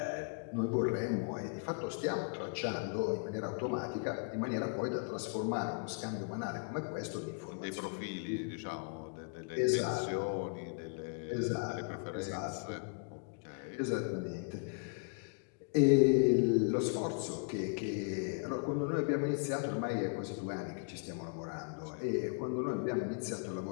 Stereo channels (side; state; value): right; quieter; 38.5 dB